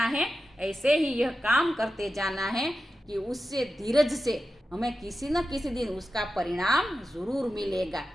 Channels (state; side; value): normal; both; correlation 0.92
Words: है, ऐसे ही यह काम करते जाना है कि उससे धीरज से हमें किसी न किसी दिन उसका परिणाम जरूर मिलेगा।